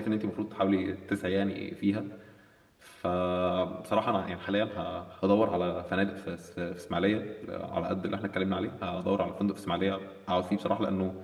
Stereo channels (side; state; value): both; identical; correlation 1.00